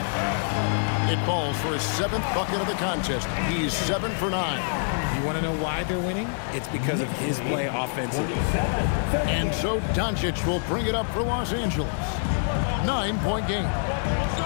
It falls for his 7th bucket of the contest. He's 7 for 9. You want to know why they're winning? It's because of his play offensively. And so Doncic will bring it up for Los Angeles. 9-point game.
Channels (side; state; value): right; silent; digital silence